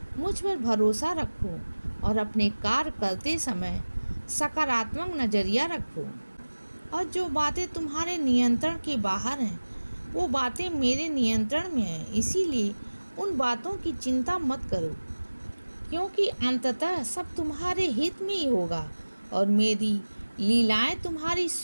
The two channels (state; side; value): inverted; both; correlation -1.00